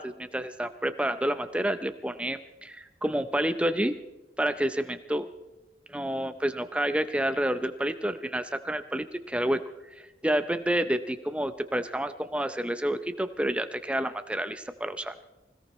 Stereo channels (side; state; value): both; normal; correlation 0.87